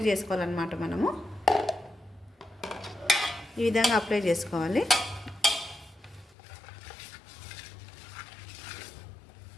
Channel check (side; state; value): right; drops out; at 6.4 s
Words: చేసుకోవాలన్నమాట. మనము ఈ విధంగా అప్లై చేసుకోవాలి.